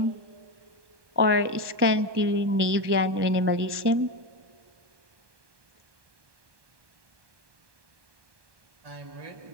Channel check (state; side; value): late; left; 1.2 ms